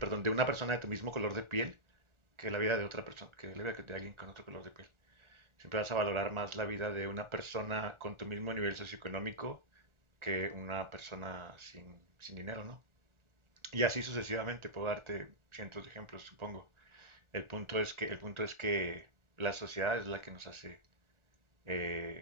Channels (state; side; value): late; left; 1.4 ms